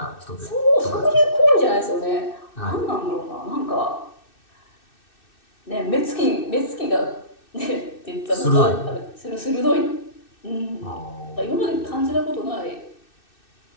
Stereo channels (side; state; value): right; late; 2.6 ms